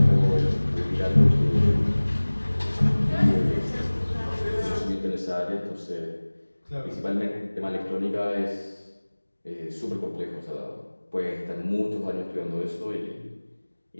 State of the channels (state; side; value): inverted; both; correlation -1.00